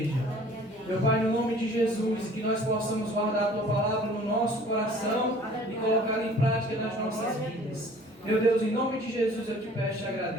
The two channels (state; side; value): normal; both; correlation 0.51